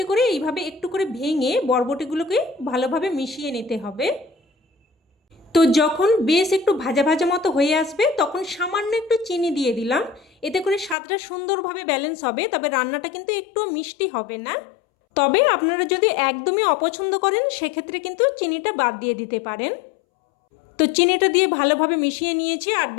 করে এইভাবে একটু করে ভেঙে বরবটিগুলোকে ভালোভাবে মিশিয়ে নিতে হবে। তো যখন বেশ একটু ভাজা ভাজা মতো হয়ে আসবে তখন সামান্য একটু চিনি দিয়ে দিলাম। এতে করে স্বাদটা সুন্দরভাবে ব্যালেন্স হবে, তবে রান্নাটা কিন্তু একটু মিষ্টি হবে না। তবে আপনারা যদি একদমই অপছন্দ করেন সেক্ষেত্রে কিন্তু চিনিটা বাদ দিয়ে দিতে পারেন। তো চিনিটা দিয়ে ভালোভাবে মিশিয়ে নিয়েছি, আর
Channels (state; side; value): drops out; right; at 11.0 s